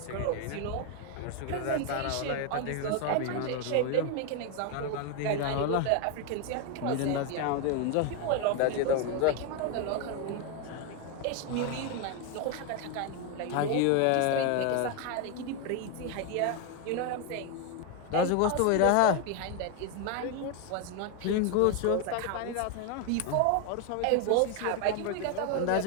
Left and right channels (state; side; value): different; both; correlation 0.01